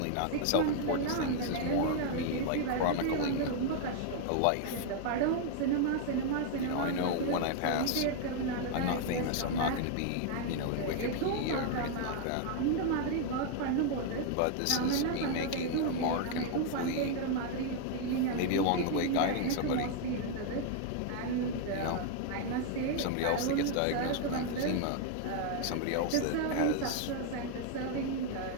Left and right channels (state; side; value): different; both; correlation 0.00